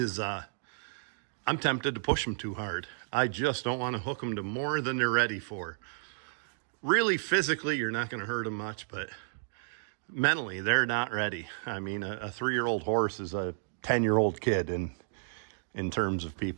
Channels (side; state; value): left; silent; digital silence